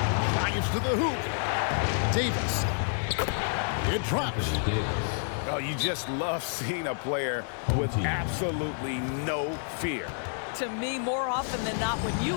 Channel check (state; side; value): silent; right; digital silence